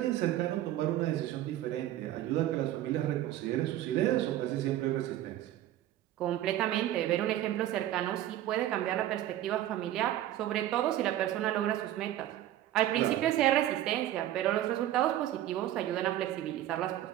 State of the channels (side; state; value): left; quieter; 13.2 dB